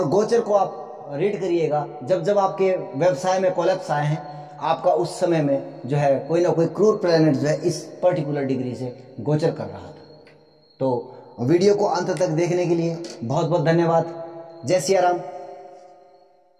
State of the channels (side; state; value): both; identical; correlation 1.00